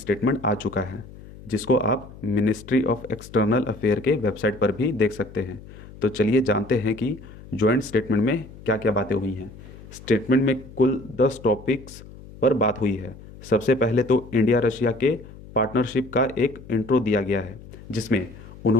आ चुका है, जिसको आप मिनिस्ट्री ऑफ एक्सटर्नल अफेयर के वेबसाइट पर भी देख सकते हैं। तो चलिए जानते हैं कि जॉइंट स्टेटमेंट में क्या क्या बातें हुई हैं। स्टेटमेंट में कुल 10 टॉपिक्स पर बात हुई है। सबसे पहले तो इंडिया रशिया के पार्टनरशिप का एक इंट्रो दिया गया है, जिसमें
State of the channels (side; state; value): left; noise; hum, 18 dB below the sound